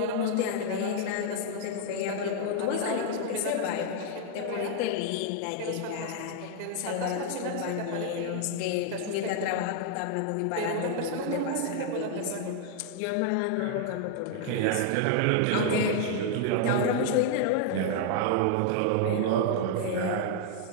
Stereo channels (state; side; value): different; both; correlation 0.00